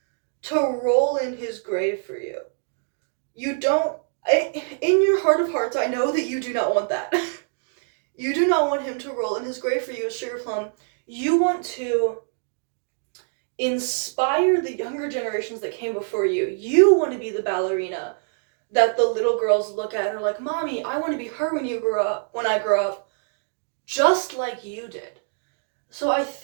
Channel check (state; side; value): silent; left; digital silence